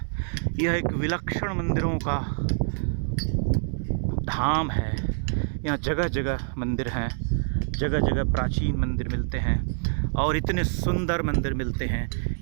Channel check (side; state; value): left; silent; digital silence